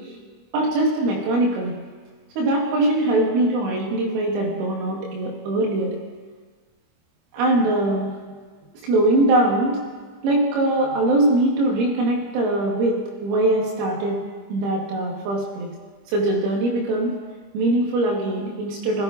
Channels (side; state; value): left; late; 25 ms